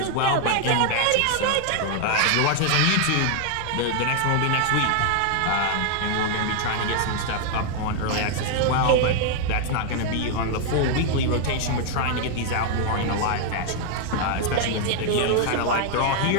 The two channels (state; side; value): different; both; correlation 0.00